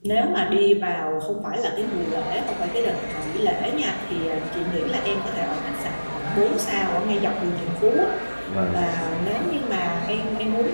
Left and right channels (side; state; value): both; inverted; correlation -1.00